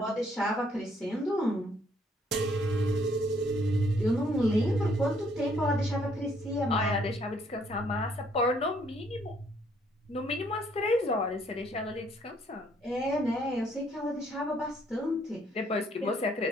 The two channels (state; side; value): normal; both; correlation 0.66